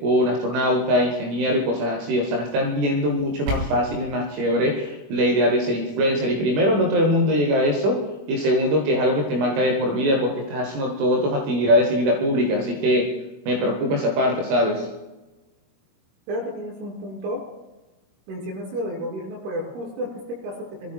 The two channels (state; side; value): late; left; 21 ms